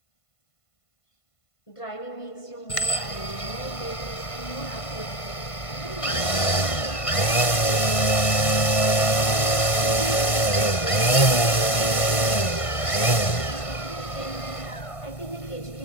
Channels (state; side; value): late; right; 1.5 ms